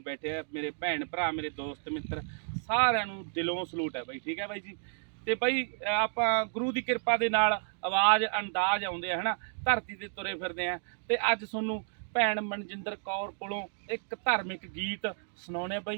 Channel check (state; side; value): silent; left; digital silence